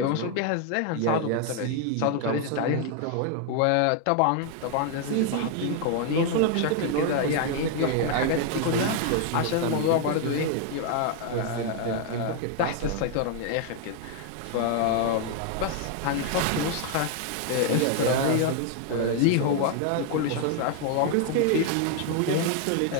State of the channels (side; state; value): both; different; correlation 0.01